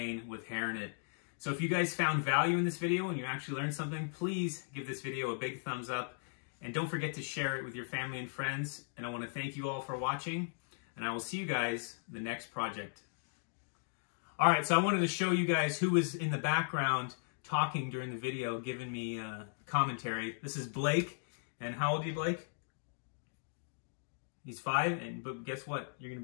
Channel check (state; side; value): silent; right; digital silence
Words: with hair in it. So if you guys found value in this video and you actually learned something, please give this video a big thumbs up. And don't forget to share it with your family and friends. And I want to thank you all for watching. And I will see you guys in the next project. All right, so I wanted to show you guys who was in the background talking during the video, giving me commentary. This is Blake. And how old are you, Blake? He's 5, but guess what? You're going to